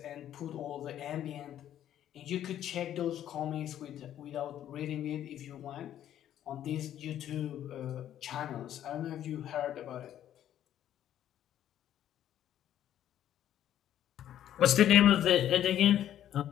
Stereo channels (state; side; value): quieter; right; 11.2 dB